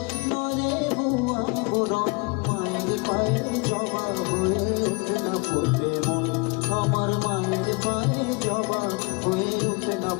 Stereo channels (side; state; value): right; quieter; 29.7 dB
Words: নয় রে ভুয়া বরণ। মায়ের পায়ের জবা হয়ে ওঠে না ফোটে মন, আমার মায়ের পায়ের জবা হয়ে ওঠে না